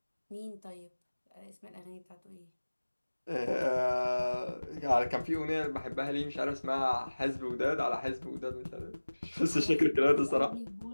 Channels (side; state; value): both; inverted; correlation -1.00